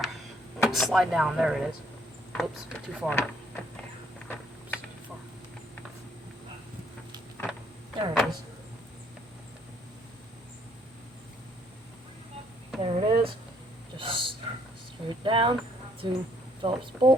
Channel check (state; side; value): normal; both; correlation 0.66